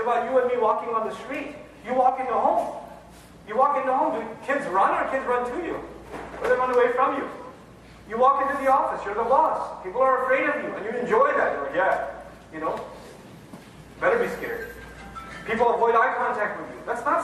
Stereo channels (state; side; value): identical; both; correlation 1.00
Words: you and me walking on the street. You walk into home. You walk into home, do kids run or kids run to you? Or they run away from you? You walk into the office, you're the boss. People are afraid of you, and you enjoy that. You're like, better be scared. People avoid eye contact with you. That's not